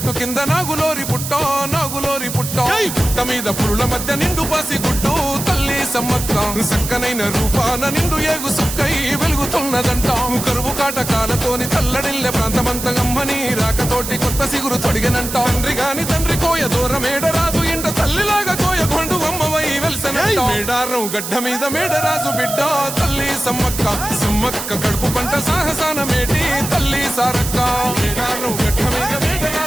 కింద నాగులోరి పుట్టం గుట్ట మీద పురుల మధ్య నిండు పాసి గుట్టు తల్లి సమ్మక్క చక్కనైన రూపాన నిండు ఏగు సుక్కై వెలుగుతున్నదంట కరువు కాటకాలతోని తల్లడిల్లె ప్రాంతమంత గమ్మని రాకతోటి కొత్త సిగురు తొడిగనంట తండ్రి కోయ దూరమేడరాజు ఇంట తల్లిలాగా కోయ కొండు అమ్మవై వెలిసనంట మేడారం గడ్డ మీద మేడరాజు బిడ్డ తల్లి సమ్మక్క కడుపు పంట సాహసాన మేటి తల్లి సారక్క మేడారం గడ్డ మీద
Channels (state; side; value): noise; right; hiss, 6 dB below the sound